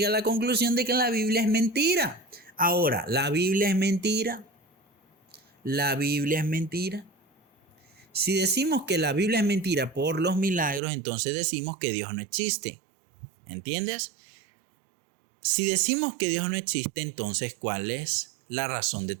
a la conclusión de que la Biblia es mentira. Ahora, ¿la Biblia es mentira? ¿La Biblia es mentira? Si decimos que la Biblia es mentira por los milagros, entonces decimos que Dios no existe. ¿Entiendes? Si decimos que Dios no existe, entonces ¿cuál es la razón de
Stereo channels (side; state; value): left; drops out; at 10.8 s